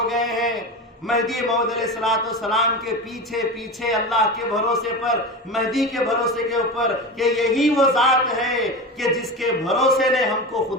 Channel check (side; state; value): both; normal; correlation 0.25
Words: گئے ہیں مہدی موعود علیہ السلام کے پیچھے پیچھے، اللہ کے بھروسے پر، مہدی کے بھروسے کے اوپر، کہ یہی وہ ذات ہے کہ جس کے بھروسے نے ہم کو